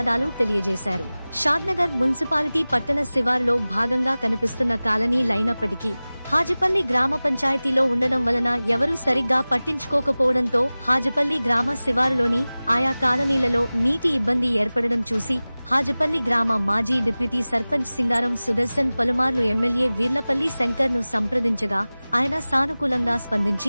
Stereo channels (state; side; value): inverted; both; correlation -0.98